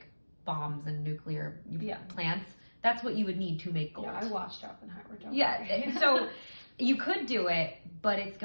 bombs and nuclear plants. That's what you would need to make gold. Yeah, I watched Oppenheimer. So you could do it, but it's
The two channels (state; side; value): inverted; both; correlation -1.00